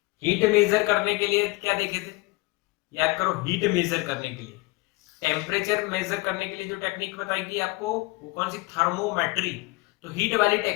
हीट मेजर करने के लिए क्या देखे थे, याद करो, हीट मेजर करने के लिए। टेम्परेचर मेजर करने के लिए जो टेक्निक बताई थी आपको वो कौन सी, थर्मोमेट्री। तो हीट वाली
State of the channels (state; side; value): quieter; right; 23.6 dB